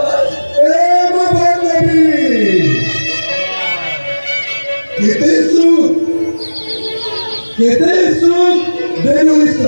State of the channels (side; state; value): both; inverted; correlation -1.00